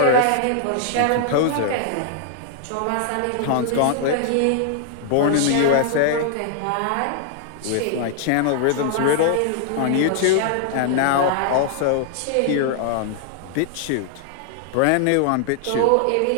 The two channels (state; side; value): different; both; correlation 0.00